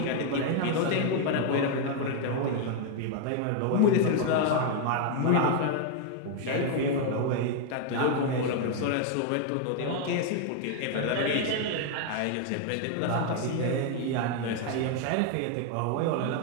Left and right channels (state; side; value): different; both; correlation 0.00